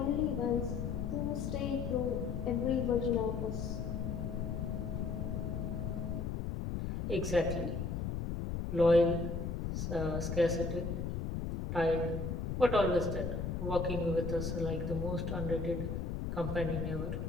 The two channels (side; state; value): left; noise; rumble, 2 dB below the sound